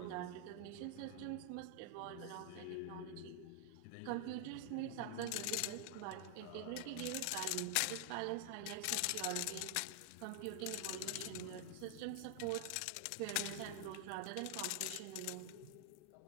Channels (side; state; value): both; different; correlation 0.00